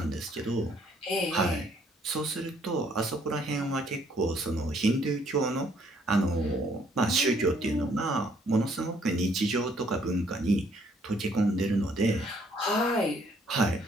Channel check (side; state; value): both; normal; correlation 0.65